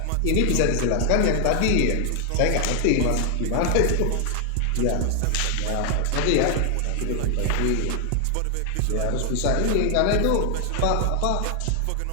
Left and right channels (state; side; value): different; both; correlation 0.00